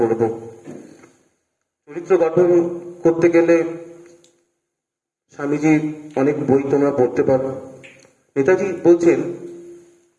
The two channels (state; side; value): identical; both; correlation 1.00